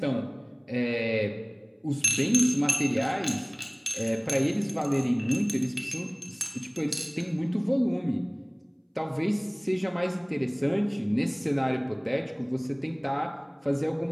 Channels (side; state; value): both; identical; correlation 1.00